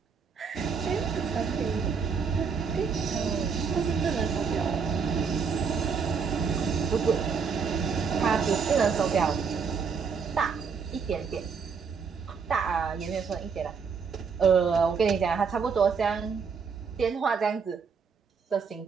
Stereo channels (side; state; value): left; quieter; 5.8 dB